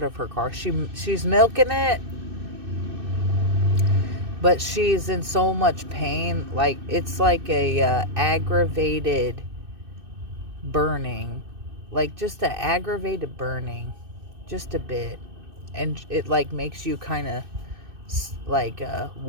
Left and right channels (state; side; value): late; left; 2.6 ms